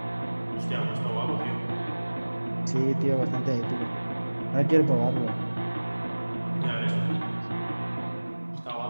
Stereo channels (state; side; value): inverted; both; correlation -1.00